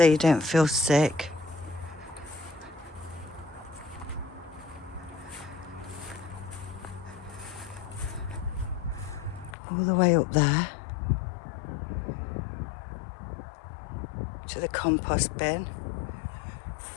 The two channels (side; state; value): right; drops out; at 9.6 s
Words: you don't feel sick. All the way up there to the compost bin.